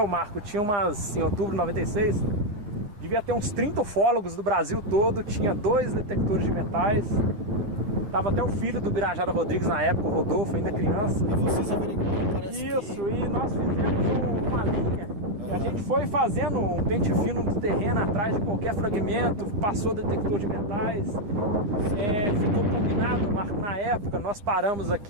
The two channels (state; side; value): late; left; 9.7 ms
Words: tinha em outubro de 96, devia ter uns 30 ufólogos do Brasil todo, tinha 2 detectores de metais, tava até o filho do Birajara Rodrigues na época, o Rodolfo, ainda criança. E vocês averiguaram, parece isso, e nós fizemos uma linha E a gente foi fazendo um pente fino no terreno atrás de qualquer fragmento, passou detector de metais, ficou combinado, Marco, na época nós paramos